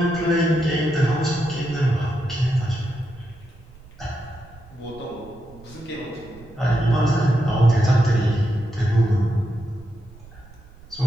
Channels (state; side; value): noise; right; rumble, 22 dB below the sound